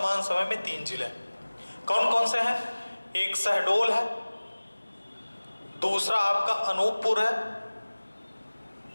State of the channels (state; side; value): inverted; both; correlation -1.00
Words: समय में 3 जिले। कौन कौन से हैं? एक शहडोल है, दूसरा आपका अनूपपुर है